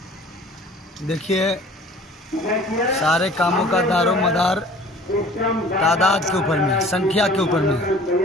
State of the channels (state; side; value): normal; both; correlation 0.48